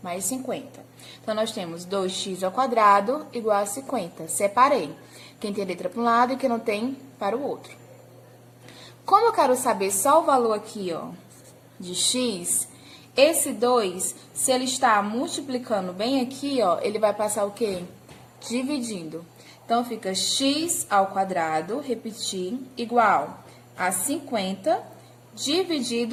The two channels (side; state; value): both; identical; correlation 1.00